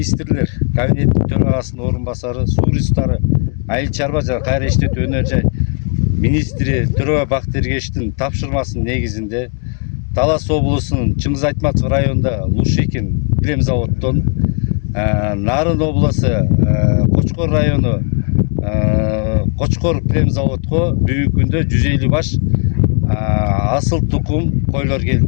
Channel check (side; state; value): right; quieter; 40.0 dB